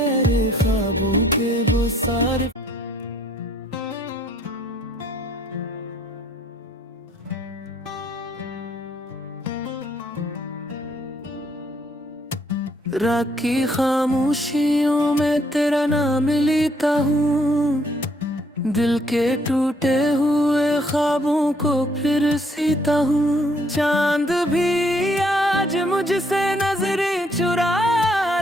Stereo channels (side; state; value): both; normal; correlation 0.67